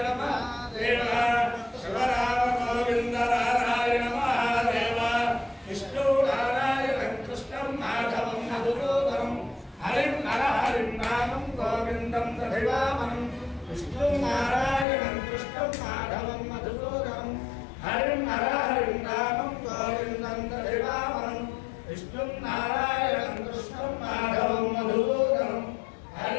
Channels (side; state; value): right; drops out; at 14.9 s